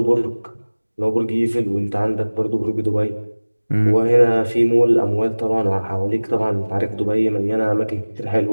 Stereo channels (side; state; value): both; inverted; correlation -1.00